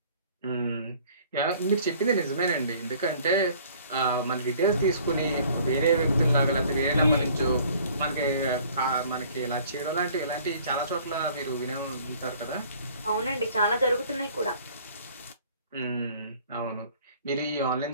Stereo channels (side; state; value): both; inverted; correlation -0.54